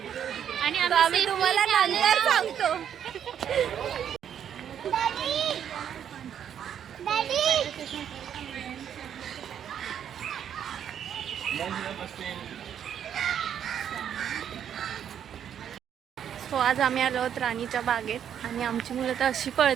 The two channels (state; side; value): quieter; left; 9.1 dB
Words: आणि आम्ही तुम्हाला नंतर सांगतो. सो आज आम्ही आलो आहोत राणीच्या बागेत आणि आमची मुलं तर अशी